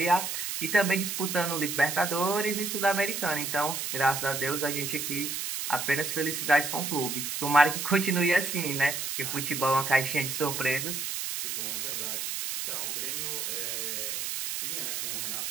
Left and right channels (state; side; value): noise; right; hiss, 3 dB below the sound